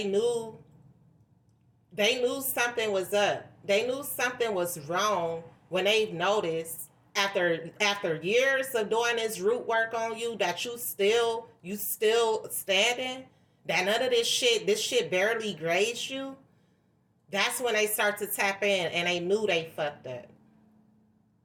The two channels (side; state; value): both; identical; correlation 1.00